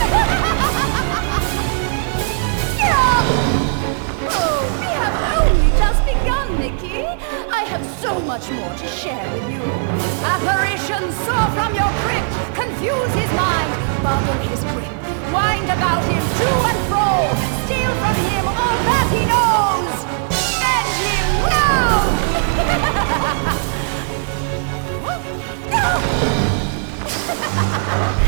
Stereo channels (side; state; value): left; silent; 60 dB below the other